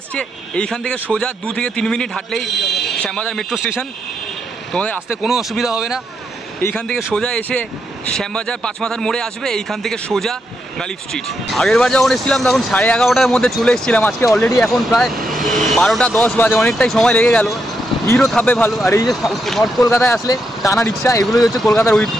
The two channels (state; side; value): normal; both; correlation 0.81